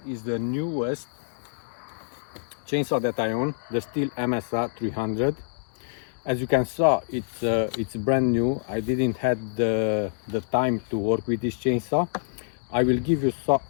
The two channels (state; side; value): silent; right; digital silence